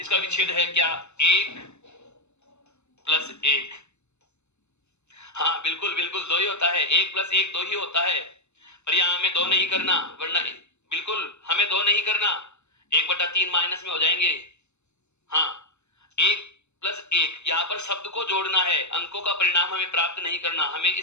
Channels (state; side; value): late; right; 0.82 ms